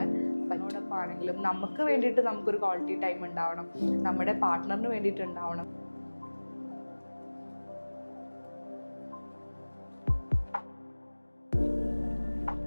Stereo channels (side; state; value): both; inverted; correlation -1.00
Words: പറ്റോടൊപ്പാണെങ്കിലും നമുക്ക് വേണ്ടിയിട്ട് നമുക്കൊരു ക്വാളിറ്റി ടൈം ഉണ്ടാവണം, നമ്മുടെ പാർട്ട്ണറിന് വേണ്ടിയിട്ട് ഉണ്ടാവണം.